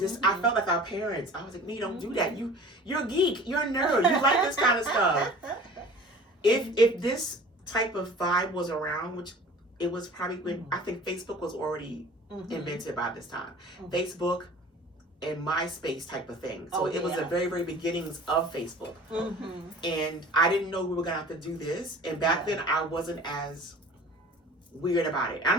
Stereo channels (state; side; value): normal; both; correlation 0.44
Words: I felt like our parents. I was like, "No, don't do that. You're a geek. You're a nerd. You like this kind of stuff." If this type of vibe was around, which it was probably when I think Facebook was already invented by this time, Facebook and MySpace type of thing. So it was the very, very beginnings of Facebook, and I didn't know we were gonna have to do this. And back then, I wasn't as weird about it.